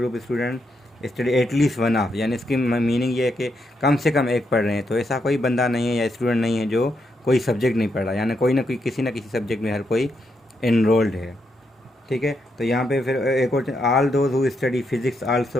student study at least one of, यानी इसकी मीनिंग ये है कि कम से कम एक पढ़ रहे हैं। तो ऐसा कोई बंदा नहीं है या स्टूडेंट नहीं है जो कोई सब्जेक्ट नहीं पढ़ रहा, यानी कोई ना कोई किसी न किसी सब्जेक्ट में हर कोई इनरोल्ड है, ठीक है। तो यहाँ पे फिर एक और, all those who study physics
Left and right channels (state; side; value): normal; both; correlation 0.81